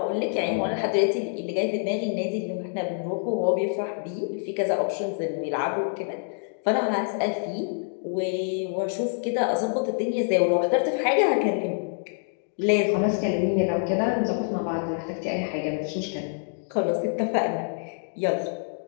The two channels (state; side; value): silent; right; digital silence